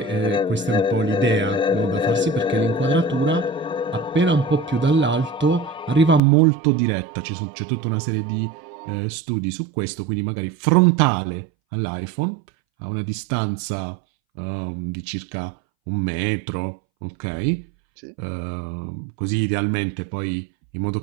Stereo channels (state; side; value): drops out; left; at 6.2 s